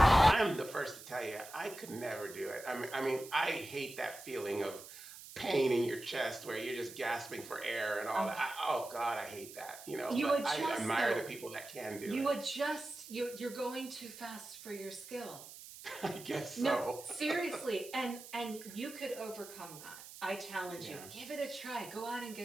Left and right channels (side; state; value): right; noise; hiss, 15 dB below the sound